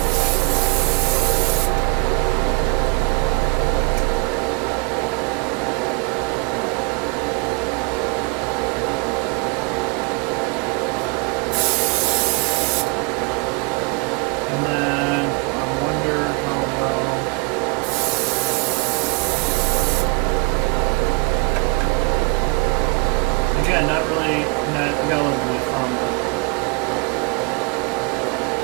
Not really, I got a little bit of fun, but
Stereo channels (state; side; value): quieter; left; 31.6 dB